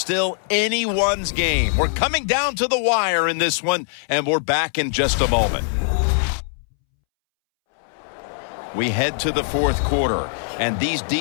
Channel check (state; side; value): silent; right; 65 dB below the other